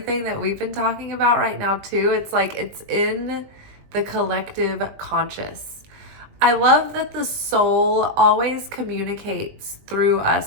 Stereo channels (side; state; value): left; late; 20 ms